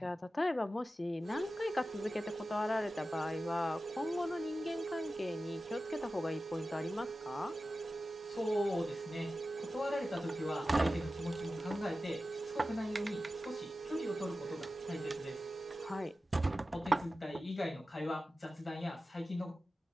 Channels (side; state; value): both; normal; correlation 0.94